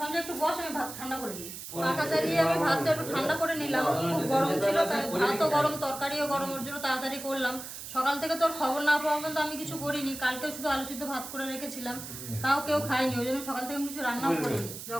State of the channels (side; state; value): right; noise; hiss, 10 dB below the sound